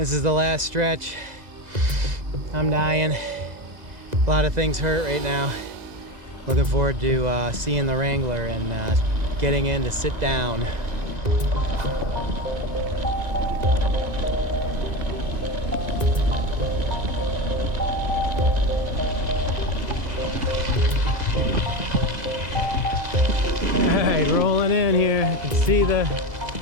is the last stretch. I'm dying. A lot of things hurt right now. Looking forward to seeing the Wrangler and getting in to sit down. Alright, rolling in here. I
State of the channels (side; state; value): left; late; 2.0 ms